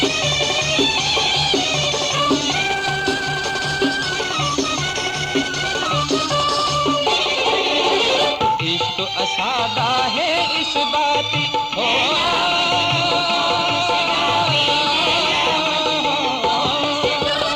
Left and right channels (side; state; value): both; identical; correlation 1.00